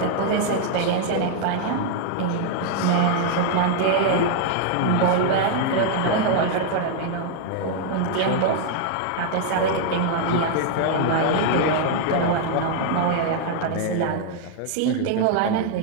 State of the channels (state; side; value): different; both; correlation 0.00